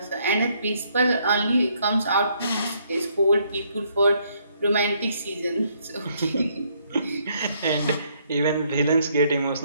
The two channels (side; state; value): both; inverted; correlation -0.70